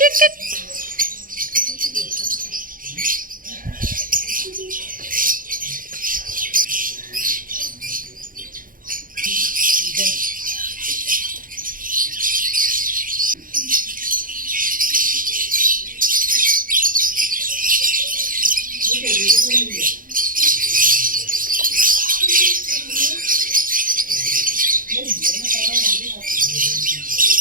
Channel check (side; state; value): left; late; 0.40 ms